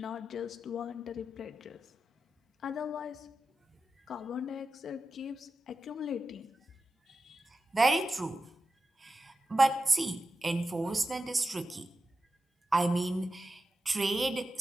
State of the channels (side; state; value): both; normal; correlation 0.91